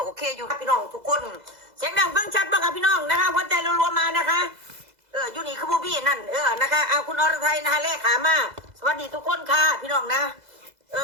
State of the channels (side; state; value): left; late; 2.0 ms